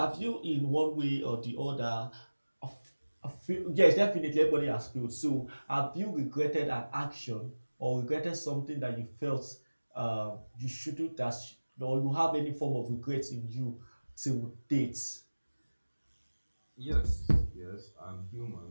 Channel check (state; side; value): inverted; both; correlation -1.00